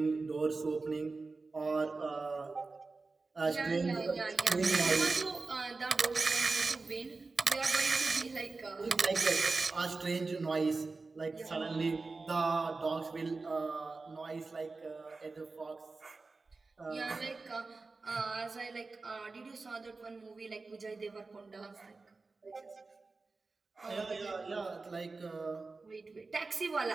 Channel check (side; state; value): left; quieter; 3.8 dB